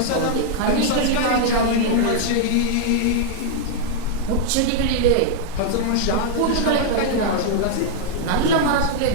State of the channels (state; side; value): different; both; correlation 0.00